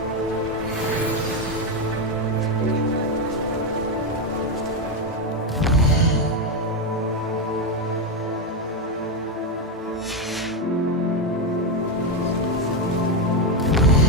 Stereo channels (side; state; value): both; normal; correlation 0.07